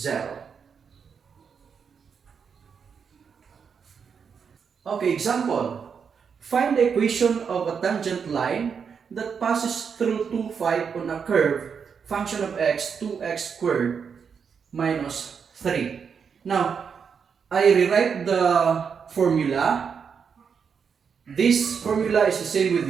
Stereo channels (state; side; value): quieter; left; 6.5 dB